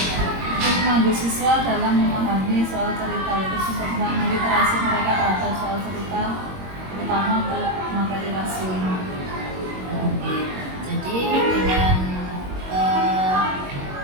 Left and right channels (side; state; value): left; late; 22 ms